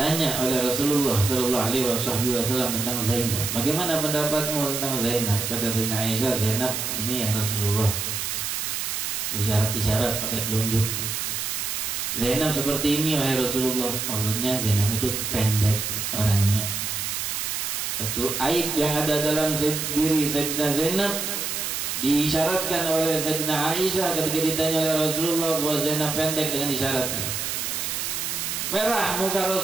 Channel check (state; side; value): noise; right; hiss, 2 dB below the sound